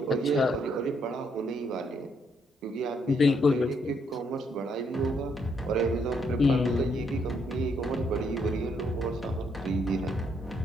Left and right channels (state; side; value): normal; both; correlation 0.73